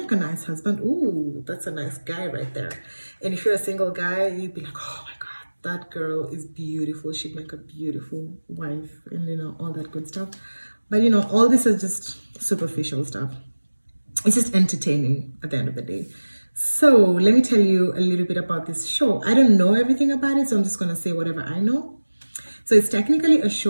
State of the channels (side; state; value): both; inverted; correlation -1.00